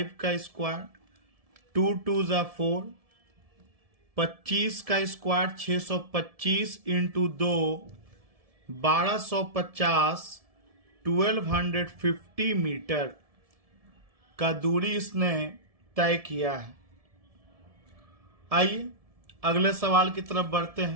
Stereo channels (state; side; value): late; left; 1.7 ms